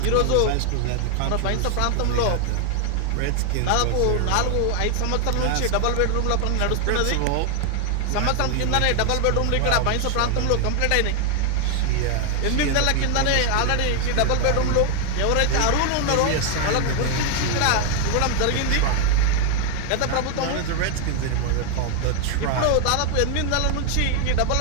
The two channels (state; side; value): different; both; correlation 0.00